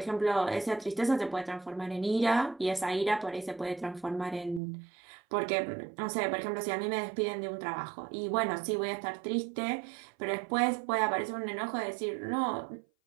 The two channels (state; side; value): drops out; left; at 4.6 s